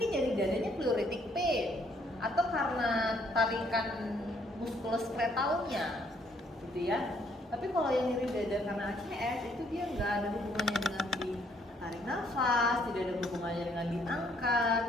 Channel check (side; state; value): both; normal; correlation 0.67